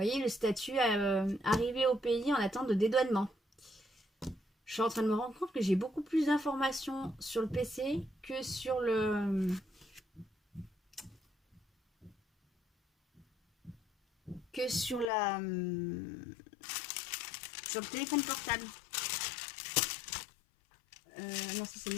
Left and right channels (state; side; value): drops out; right; at 15.1 s